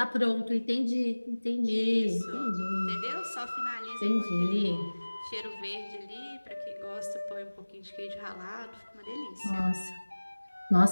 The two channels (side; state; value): both; inverted; correlation -1.00